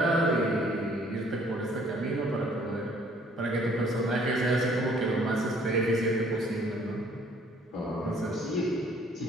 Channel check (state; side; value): normal; both; correlation 0.59